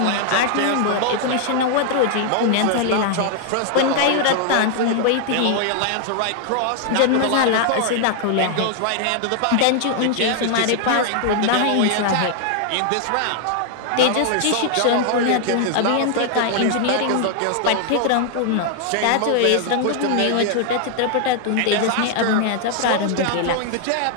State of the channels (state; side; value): different; both; correlation 0.00